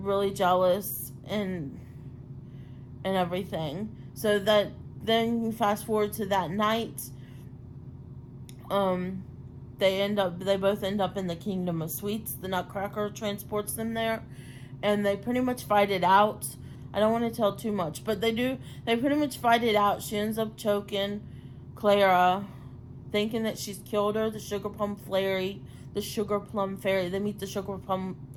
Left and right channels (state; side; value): identical; both; correlation 1.00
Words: jealous and everything. So that then you fast forward to that night. They both end up in the Kingdom of Sweets. The Nutcracker transports them there, and they pretty much fight it out. I don't want to tell too much, but they do. They pretty much fight it out. She ends up choking Clara, thinking that she's killed her. The sugar plum fairy. They meet the sugar